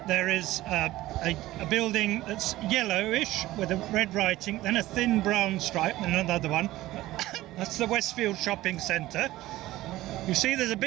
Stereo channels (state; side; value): quieter; left; 16.6 dB